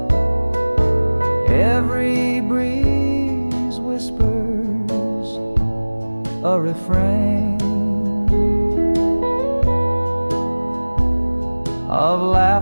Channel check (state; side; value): inverted; both; correlation -1.00